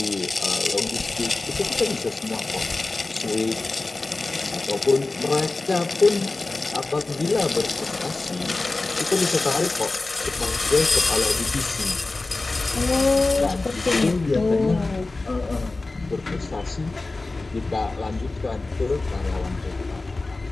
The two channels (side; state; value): right; quieter; 3.3 dB